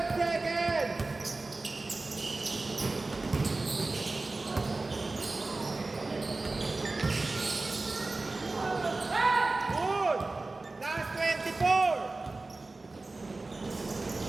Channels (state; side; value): quieter; left; 3.3 dB